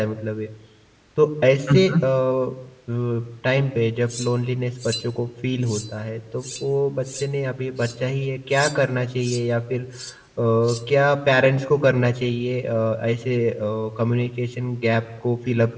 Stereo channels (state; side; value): identical; both; correlation 1.00